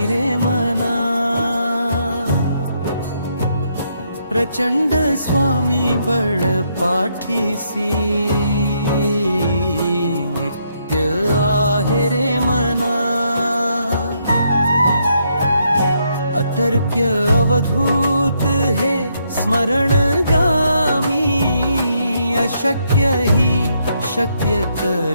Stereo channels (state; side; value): inverted; both; correlation -0.75